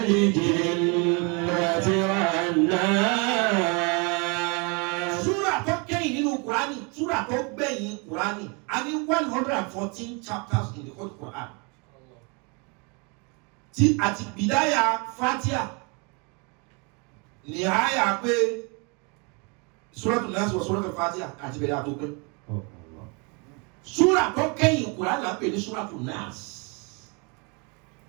wan nas. Surah tó gbẹ̀yìn Qur'ani a ní 114 chapters in the whole Qur'an tí àti bìdáyà Fatiha ní àyà pé Suratul Nas wa Suratul Fatiha àti bẹ̀rẹ̀ àtó pé surah tó kẹ́yìn Qur'an là ń pè ní Suratul Nas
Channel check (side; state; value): left; quieter; 32.0 dB